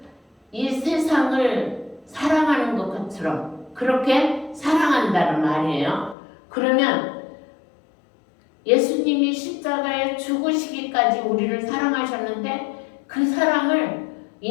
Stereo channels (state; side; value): drops out; right; at 6.2 s